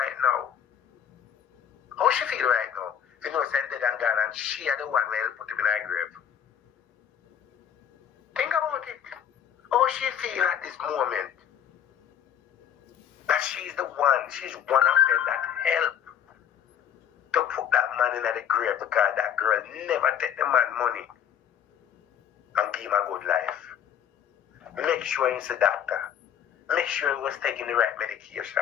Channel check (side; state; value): right; quieter; 9.2 dB